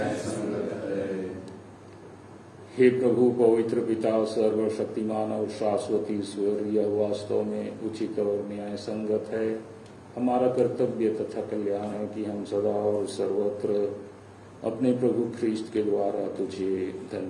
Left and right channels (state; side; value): identical; both; correlation 1.00